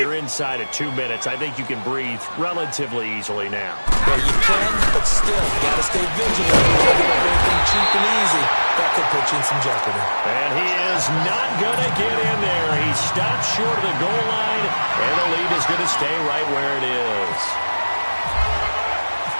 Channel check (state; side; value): inverted; both; correlation -1.00